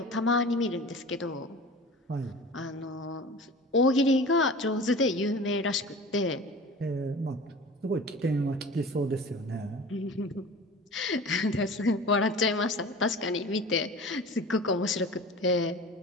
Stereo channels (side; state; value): both; normal; correlation 0.38